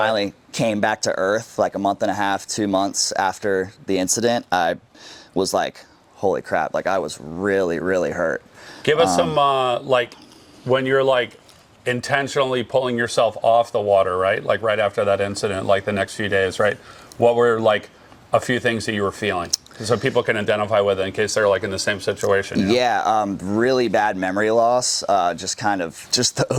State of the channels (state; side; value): identical; both; correlation 1.00